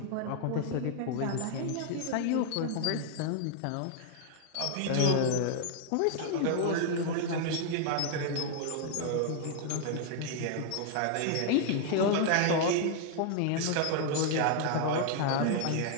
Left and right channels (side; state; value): both; different; correlation 0.00